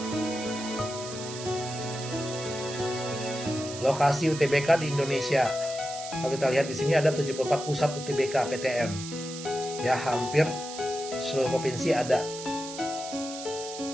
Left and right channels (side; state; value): right; noise; hiss, 10 dB below the sound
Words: Lokasi UTBK di Indonesia. Kalau kita lihat di sini ada 74 pusat UTBK PTN. Ya, hampir seluruh provinsi ada.